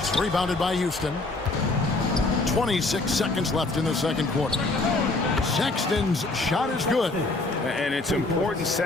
rebounded by Houston. 26 seconds left in the second quarter. Sexton's shot is good. And it's important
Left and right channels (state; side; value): quieter; right; 3.2 dB